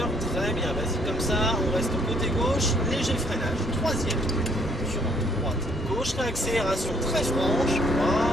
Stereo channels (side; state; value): both; normal; correlation 0.65